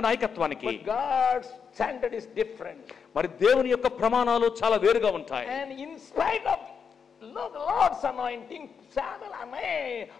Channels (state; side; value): quieter; right; 6.5 dB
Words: నాయకత్వానికి. But God's standard is different. మరి దేవుని యొక్క ప్రమాణాలు చాలా వేరుగా ఉంటాయి. And in spite of the Lord's anointing, Samuel